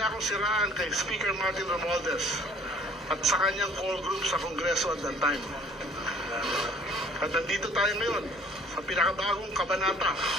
akong siraan kay Speaker Martin Romualdez at sa kanyang core group sa Kongreso at that time. At nandito tayo ngayon sa pinakabagong kabanata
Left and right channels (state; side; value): normal; both; correlation 0.53